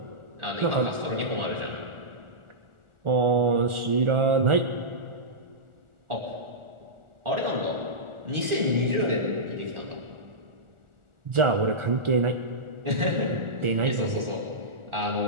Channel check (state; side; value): late; left; 1.4 ms